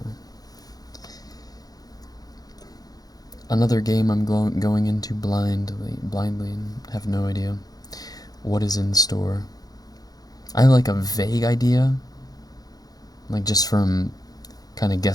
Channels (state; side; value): late; right; 0.18 ms